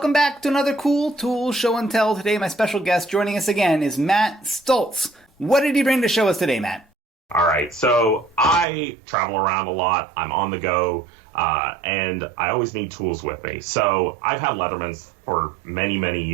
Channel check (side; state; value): left; drops out; at 8.7 s